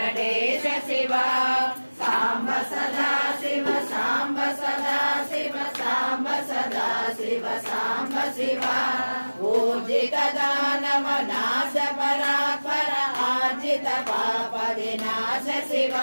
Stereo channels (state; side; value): inverted; both; correlation -1.00